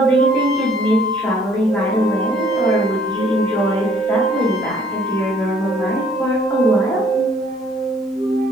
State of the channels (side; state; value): both; normal; correlation 0.61